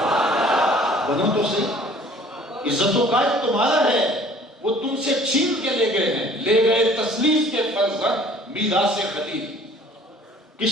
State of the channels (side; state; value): both; normal; correlation 0.53